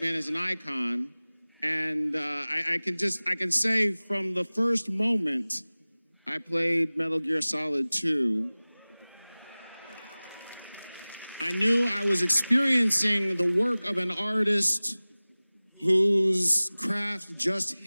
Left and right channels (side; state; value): both; inverted; correlation -0.99